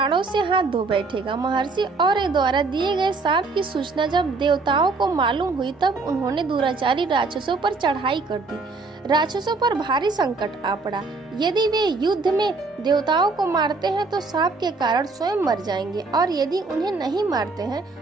से हाथ धो बैठेगा। महर्षि और्य द्वारा दिए गए शाप की सूचना जब देवताओं को मालूम हुई, तब उन्होंने दुराचारी राक्षसों पर चढ़ाई कर दी। राक्षसों पर भारी संकट आ पड़ा। यदि वे युद्ध में देवताओं को मारते हैं तो शाप के कारण स्वयं मर जाएंगे, और यदि उन्हें नहीं मारते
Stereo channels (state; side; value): quieter; left; 3.9 dB